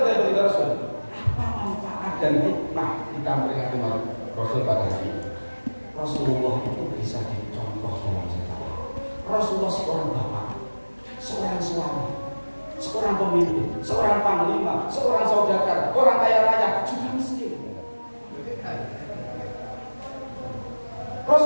dari Rasul? Apa kita memperingati Maulid Rasul pada hari ini. Rasulullah itu bisa dicontoh dalam sejarah. Rasulullah seorang bapak, seorang suami, seorang pemimpin, seorang panglima, seorang saudagar, orang kaya raya, juga miskin.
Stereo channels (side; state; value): both; inverted; correlation -1.00